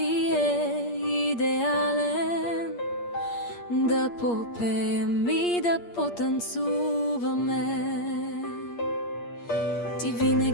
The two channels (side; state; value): right; late; 8.5 ms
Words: е идеален, да попеем и да потанцуваме. Ти